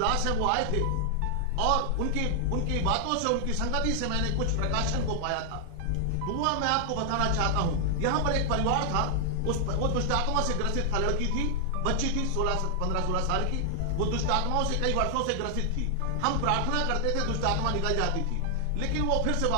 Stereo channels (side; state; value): both; different; correlation -0.01